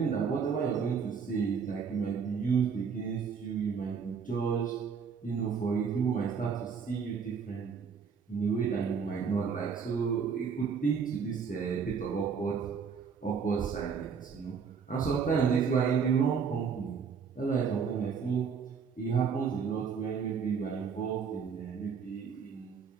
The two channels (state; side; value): quieter; left; 6.2 dB